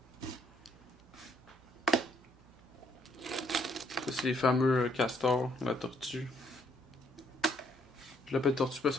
Ça, c'est les fameux castors, la tortue. Je l'appelle tortue parce que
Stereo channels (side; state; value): right; noise; hum, 26 dB below the sound